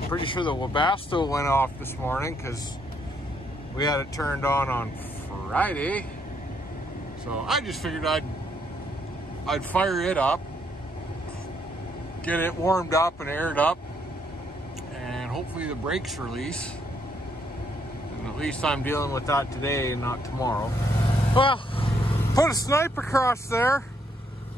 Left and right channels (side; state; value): both; normal; correlation 0.72